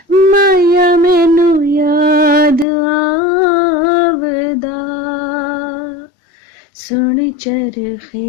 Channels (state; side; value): drops out; right; at 2.7 s